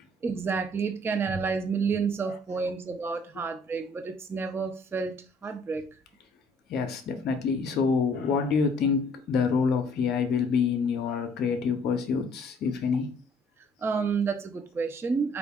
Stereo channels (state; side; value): normal; both; correlation 0.60